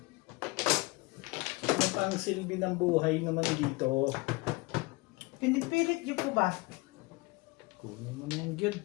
Ano pa ang silbi ng buhay naman dito? Pinipilit niyo po ba? Kunin mo na yan, Jud.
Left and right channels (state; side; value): quieter; right; 24.9 dB